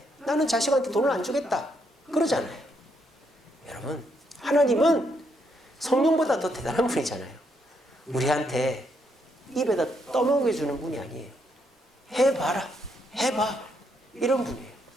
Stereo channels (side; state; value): both; normal; correlation 0.76